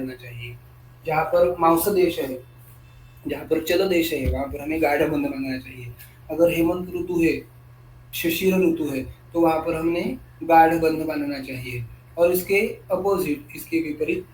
चाहिए। जहाँ पर मांस देश है, जहाँ पर चल देश है वहाँ पर हमें गाढ़ बंध बांधना चाहिए। अगर हेमंत ऋतु है, शिशिर ऋतु है, तो वहाँ पर हमने गाढ़ बंध बांधना चाहिए। और इसके अपोजिट, इसके विपरीत,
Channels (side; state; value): both; identical; correlation 1.00